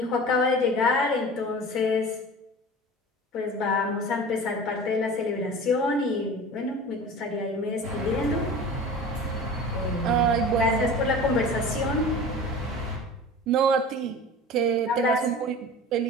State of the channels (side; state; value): both; normal; correlation 0.37